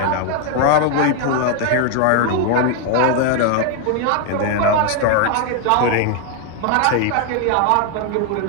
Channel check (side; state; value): both; different; correlation 0.00